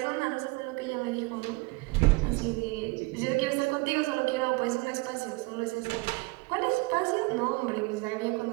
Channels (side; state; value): left; quieter; 26.0 dB